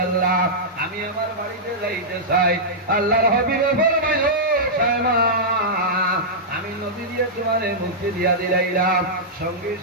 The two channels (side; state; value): both; normal; correlation -0.11